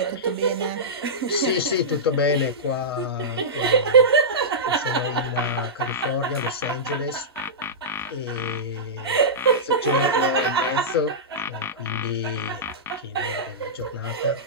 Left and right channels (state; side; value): normal; both; correlation -0.15